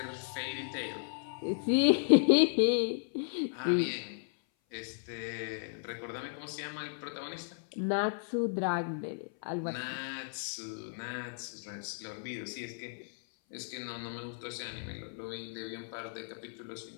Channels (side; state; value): right; silent; 55 dB below the other